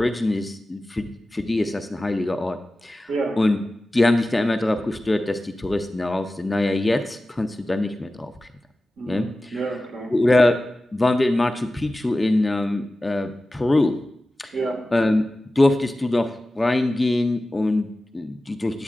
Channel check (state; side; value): normal; both; correlation 0.95